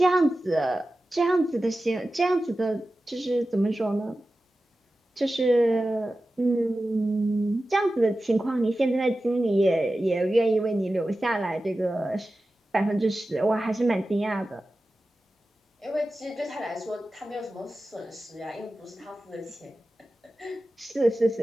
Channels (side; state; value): both; normal; correlation 0.94